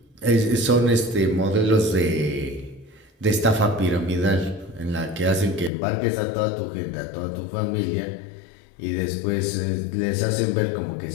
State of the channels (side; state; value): right; drops out; at 5.7 s